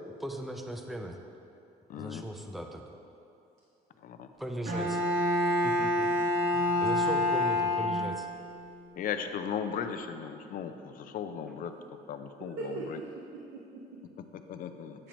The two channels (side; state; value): both; normal; correlation 0.38